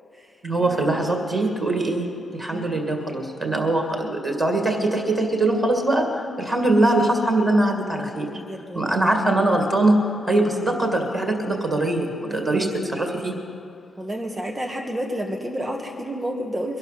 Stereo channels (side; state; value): both; normal; correlation 0.82